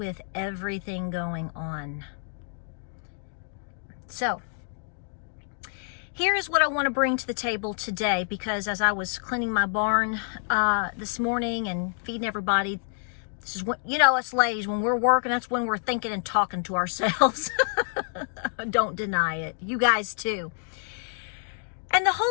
everything going on. So here is what I want to bring to the table today, because as I was cleaning my barn this morning and feeding everybody, this is what, you know, us ladies, when we're working, that's when we're thinking and talking to ourselves. Don't deny it. You guys too. And the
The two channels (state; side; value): silent; right; digital silence